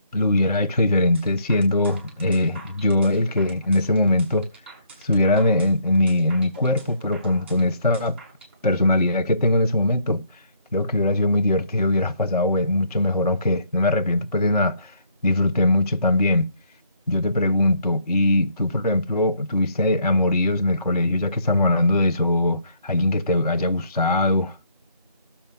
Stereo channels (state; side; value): inverted; both; correlation -0.67